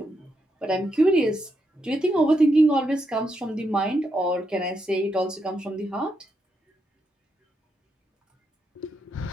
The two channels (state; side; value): normal; both; correlation 0.82